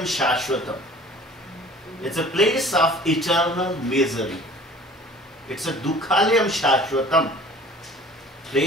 Shashvatam. It's a place of eternal misery. It's a Dukkhalayam Shashvatam,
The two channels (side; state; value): both; normal; correlation 0.48